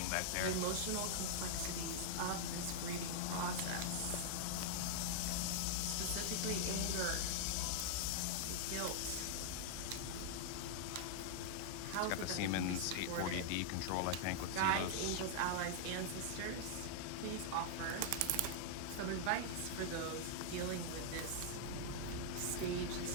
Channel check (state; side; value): different; both; correlation -0.01